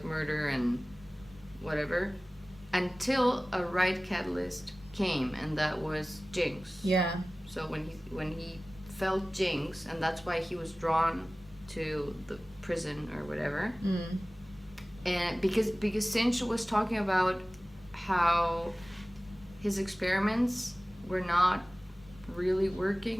murder and whatever, until a right catalyst came, and that was Jinx. Yeah. So when he felt Jinx, and that's why he was drawn to the prison or whatever. and because Sinch was talking about how his experiments were not really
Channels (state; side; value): normal; both; correlation 0.98